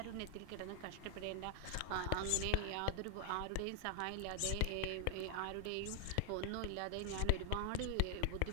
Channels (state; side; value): different; both; correlation 0.00